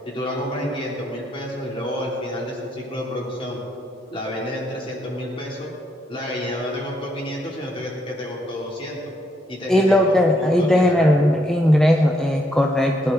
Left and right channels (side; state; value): both; normal; correlation 0.75